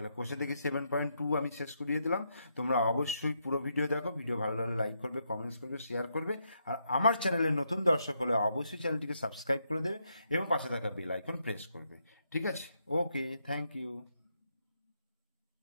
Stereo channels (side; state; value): both; inverted; correlation -0.79